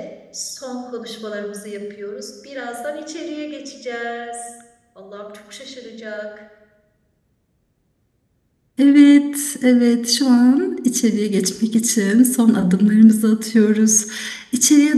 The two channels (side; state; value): both; identical; correlation 1.00